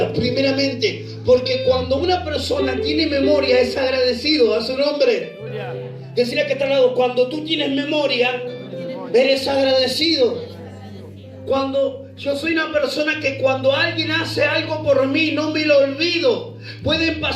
Primeramente, porque cuando una persona tiene memoria es agradecido. A su nombre. Decirle que está al lado, cuando tú tienes memoria, eres agradecido. Cuando yo soy una persona que cuando alguien hace algo por mí, no me lo olvido. Pueden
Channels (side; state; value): both; identical; correlation 1.00